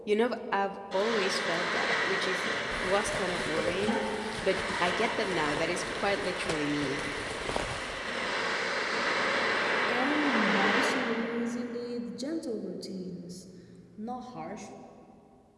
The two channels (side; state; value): both; identical; correlation 1.00